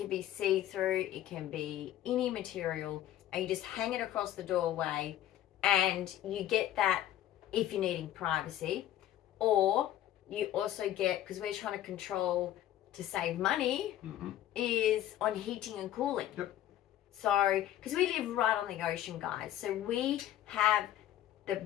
be see-through, it can be any material, and you just hang it across the doorway and you get that if you're needing privacy. Or you also get, because we're trying to control to save money, is on heating and cooling. Yep. So, because we live right on the ocean, guys, so we have the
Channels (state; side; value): quieter; right; 12.5 dB